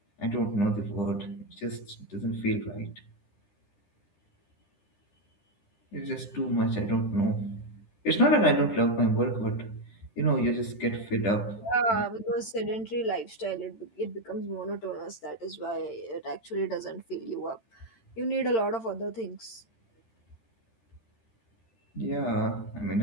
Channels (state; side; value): late; right; 13 ms